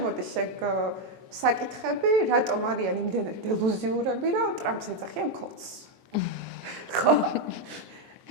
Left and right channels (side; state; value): left; late; 23 ms